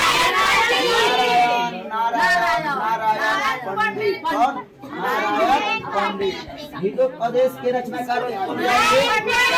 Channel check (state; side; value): identical; both; correlation 1.00